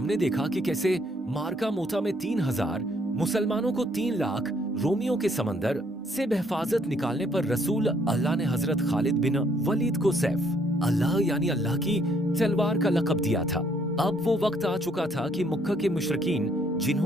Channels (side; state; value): both; normal; correlation 0.67